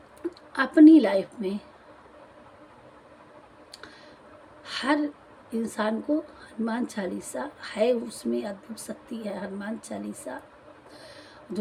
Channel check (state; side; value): identical; both; correlation 1.00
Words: अपनी लाइफ में हर इंसान को हनुमान चालीसा है, उसमें अद्भुत शक्ति है। हनुमान चालीसा,